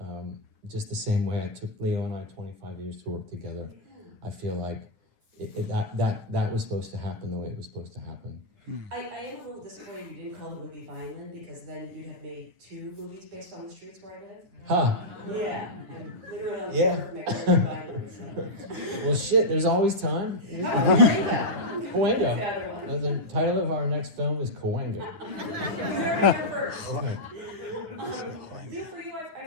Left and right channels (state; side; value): late; left; 9.7 ms